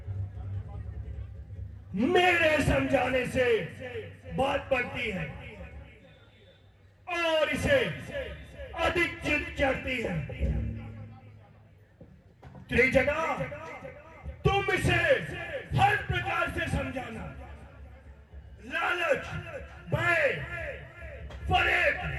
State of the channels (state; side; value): identical; both; correlation 1.00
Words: मेरे समझाने से बात बढ़ती है और इसे अधिक जिद चढ़ती है। त्रिजटा तुम इसे हर प्रकार से समझाना, लालच, भय, फरेब